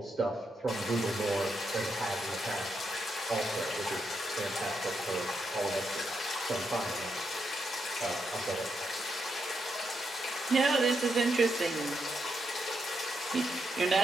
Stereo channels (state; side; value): normal; both; correlation 0.81